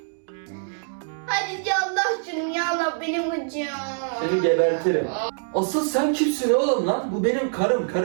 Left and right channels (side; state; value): left; silent; digital silence